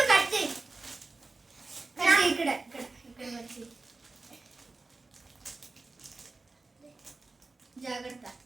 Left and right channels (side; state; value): left; quieter; 3.5 dB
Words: కట్ చేయి. ఇక్కడ ఇక్కడ ఇక్కడ వచ్చి జాగ్రత్త.